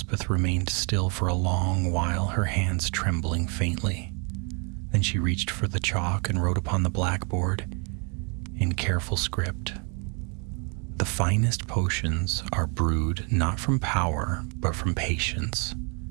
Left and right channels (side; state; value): left; quieter; 35.4 dB